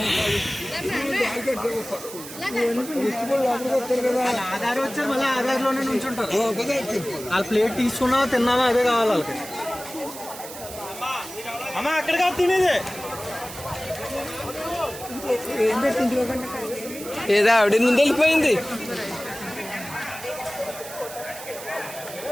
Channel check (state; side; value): noise; right; hiss, 13 dB below the sound